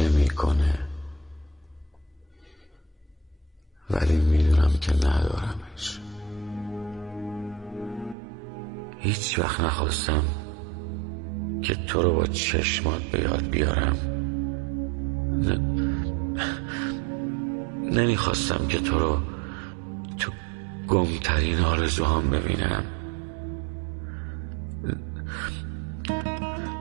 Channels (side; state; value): left; drops out; at 8.2 s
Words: میکنه، ولی میدونم که ندارمش. هیچ وقت نخواستم که تو رو با چشمات به یاد بیارم. نمیخواستم که تو رو تو گمترین آرزوهام ببینم.